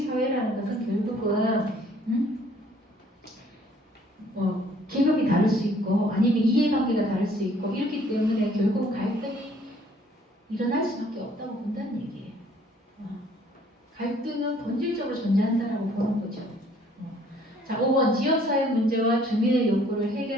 것은 결국은 계급이 다를 수 있고 아니면 이해관계가 다를 수 있고 이렇기 때문에 결국 갈등이 일어날 수밖에 없다고 본다는 얘기예요. 갈등은 본질적으로 존재한다라고 보는 거죠. 자, 5번 지역사회 문제와 주민의 욕구를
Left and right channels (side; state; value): both; normal; correlation 0.60